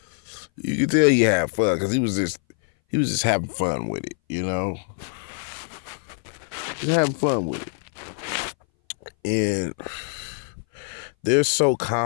You can tell he had fun because he was just having fun with it, you know? Just having fun with it. And they're so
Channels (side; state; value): right; silent; 59 dB below the other